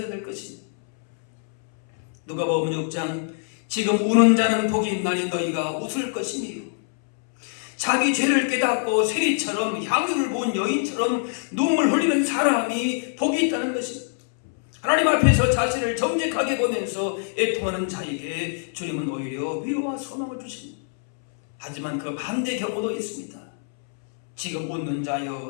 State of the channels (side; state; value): right; silent; 62 dB below the other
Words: 될 것입니다. 누가복음 6장 지금 우는 자는 복이 있나니 너희가 웃을 것이니요. 자기 죄를 깨닫고 세리처럼 향유를 부은 여인처럼 눈물 흘리는 사람이 복이 있다는 것입니다. 하나님 앞에서 자신을 정직하게 보면서 애통하는 자에게 주님은 오히려 위로와 소망을 주십니다. 하지만 그 반대 경우도 있습니다. 지금 웃는